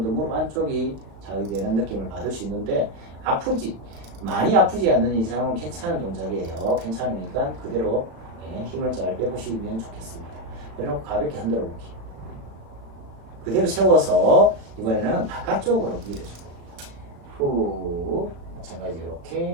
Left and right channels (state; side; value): late; left; 36 ms